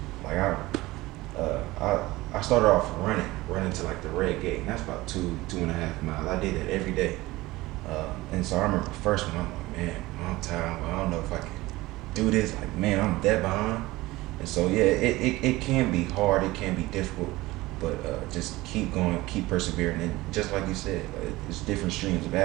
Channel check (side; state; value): left; quieter; 19.4 dB